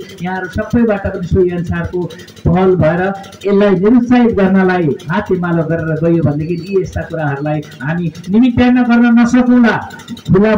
यहाँहरू सबैबाट पनि सोही अनुसारको पहल भएर यसलाई निरुत्साहित गर्नलाई हातेमालो गरेर गयो भनेदेखि यी यस्ता कुराहरूलाई हामी निमित्यान्न गर्न नसकौँला। खुला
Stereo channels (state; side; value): identical; both; correlation 1.00